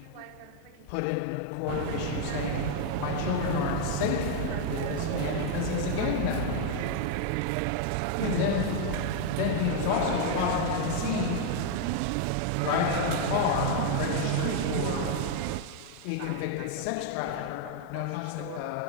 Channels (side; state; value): both; different; correlation 0.00